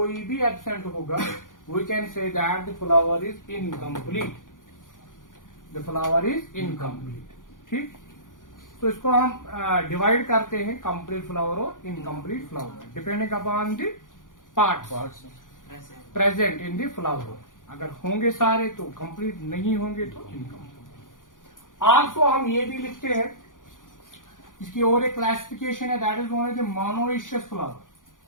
भी एब्सेंट होगा, we can say that the flower is incomplete. The flower is incomplete. ठीक, तो इसको हम डिवाइड करते हैं कंप्लीट फ्लावर और incomplete flower, depending upon the parts present in the flower. अगर होंगे सारे तो कंप्लीट, नहीं होंगे तो इनकम्प्लीट। आल्सो हम ये भी लिखते हैं, इसकी और एक क्लासिफिकेशन है, that is known as monoecious flower.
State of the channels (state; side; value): late; right; 0.88 ms